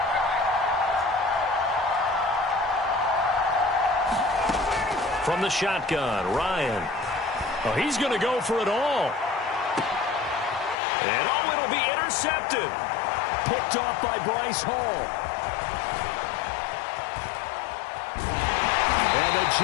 From the shotgun, Ryan. Oh, he's going to go for it all. And oh, it'll be intercepted. Picked off by Bryce Hall. And the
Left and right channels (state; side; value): drops out; right; at 10.8 s